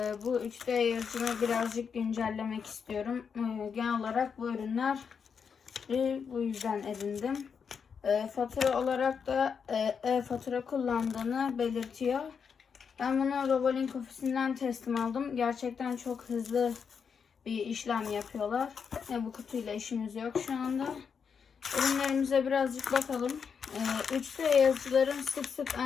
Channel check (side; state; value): right; quieter; 6.4 dB